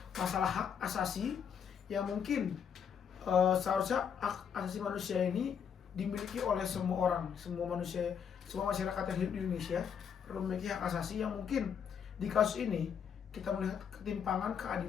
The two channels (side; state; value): right; quieter; 7.5 dB